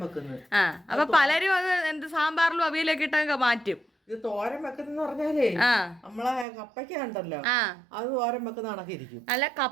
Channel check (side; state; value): left; drops out; at 6.5 s